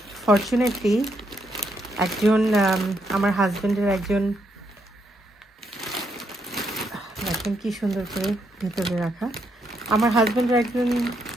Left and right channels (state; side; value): normal; both; correlation 0.77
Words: ফরচুনেটলি একজন আমার হাজব্যান্ডের একজন, দেখেন কি সুন্দর করে ভেতরে রাখা, আমার হাজব্যান্ডের একজন